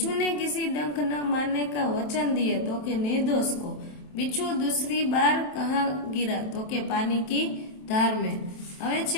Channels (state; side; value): late; right; 27 ms